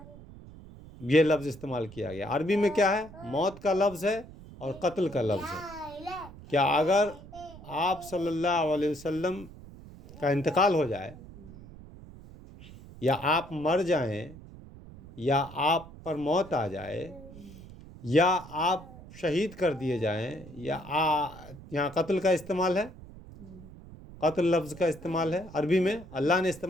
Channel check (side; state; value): right; noise; rumble, 17 dB below the sound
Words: یہ لفظ استعمال کیا گیا۔ عربی میں کیا ہے؟ موت کا لفظ ہے اور قتل کا لفظ ہے۔ کیا اگر آپ صلی اللہ علیہ وسلم کا انتقال ہو جائے، یا آپ مر جائیں، یا آپ پر موت آ جائے، یا آپ شہید کر دیے جائیں، یا یہاں قتل کا استعمال ہے، قتل لفظ کا استعمال ہے عربی میں، اللہ نے